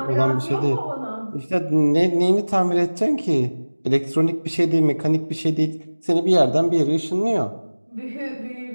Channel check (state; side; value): inverted; both; correlation -1.00